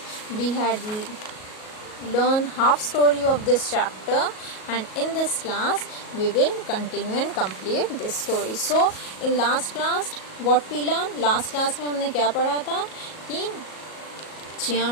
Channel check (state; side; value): late; right; 37 ms